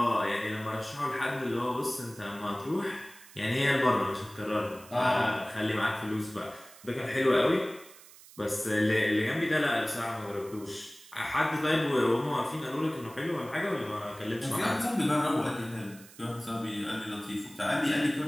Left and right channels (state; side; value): noise; right; hiss, 21 dB below the sound